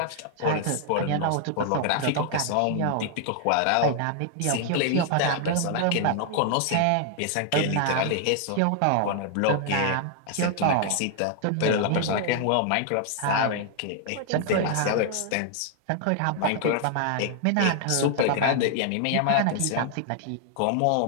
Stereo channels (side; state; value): both; different; correlation 0.00